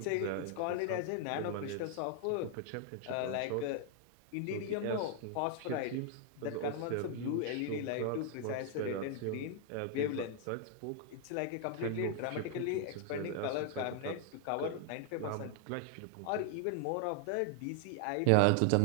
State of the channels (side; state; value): both; different; correlation 0.00